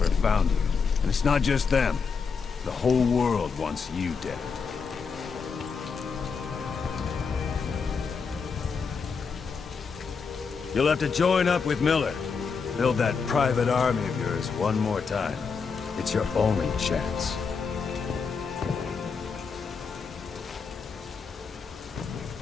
found you. And it's not just them. The whole world wants you dead. You'll have to join up with Miller. Build that private army of yours one more time. It's your only chance.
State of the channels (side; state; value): right; quieter; 5.5 dB